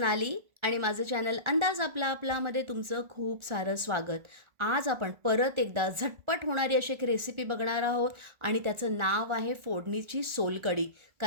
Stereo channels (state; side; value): late; left; 1.4 ms